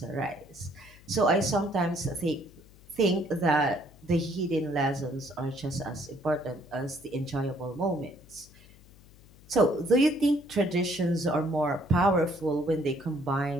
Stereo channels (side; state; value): left; noise; hum, 24 dB below the sound